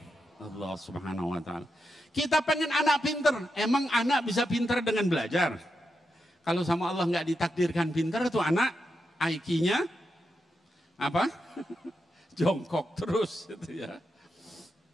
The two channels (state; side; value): normal; both; correlation 0.86